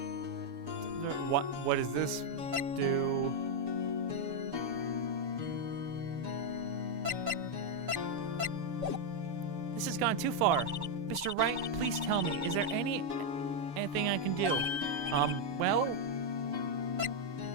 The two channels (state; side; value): late; left; 6.9 ms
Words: What does this do? This has gone too far. Mr. Wright, please tell me, is there anything I can do? Well...